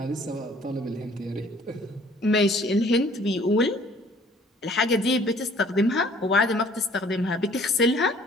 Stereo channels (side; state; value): both; normal; correlation 0.55